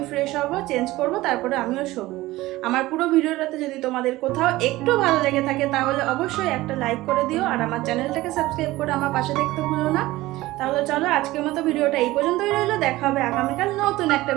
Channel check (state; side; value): quieter; left; 18.0 dB